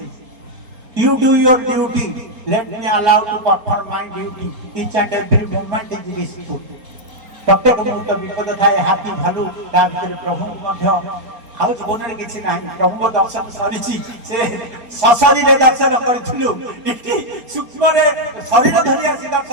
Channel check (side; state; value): left; late; 4.3 ms